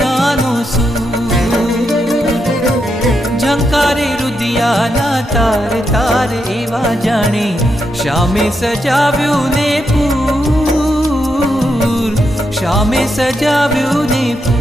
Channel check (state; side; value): normal; both; correlation 0.83